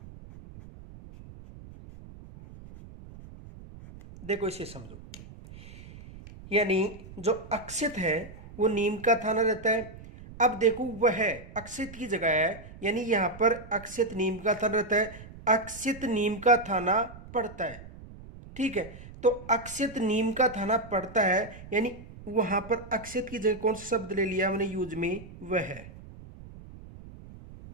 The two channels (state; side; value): noise; right; rumble, 17 dB below the sound